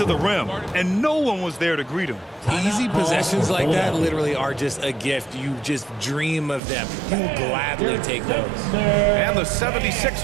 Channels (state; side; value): drops out; left; at 6.6 s